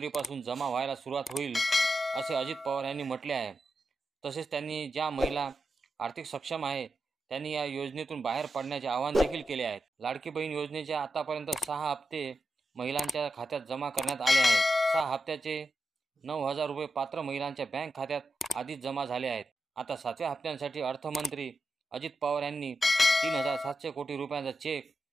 जमा व्हायला सुरुवात होईल असे अजित पवार यांनी म्हटले आहे। तसेच त्यांनी ज्या महिला आर्थिक सक्षम आहे त्यांनी या योजनेतून बाहेर पडण्याचे आवाहन देखील केले आहे। लाडकी बहीण योजनेचे आतापर्यंत 6 हप्ते महिलांच्या खात्यात जमा करण्यात आले आहेत। 6 हप्त्याचे 9000 रुपये पात्र महिलांच्या बँक खात्यात आधीच जमा झाले आहेत। आता 7व्या हप्त्यासाठी अर्थमंत्री अजित पवार यांनी 3700 कोटी रुपयांचा चेक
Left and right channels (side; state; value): both; normal; correlation 0.89